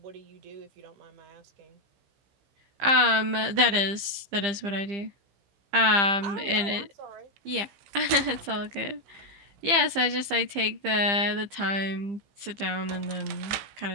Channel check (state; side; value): late; left; 15 ms